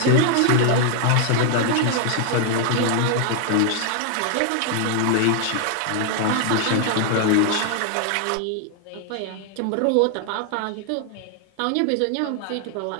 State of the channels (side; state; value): both; different; correlation 0.00